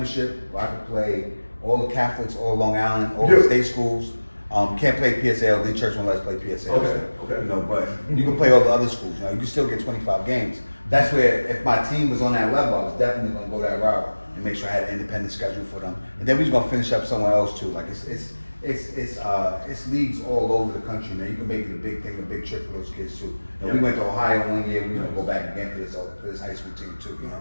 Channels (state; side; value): inverted; both; correlation -1.00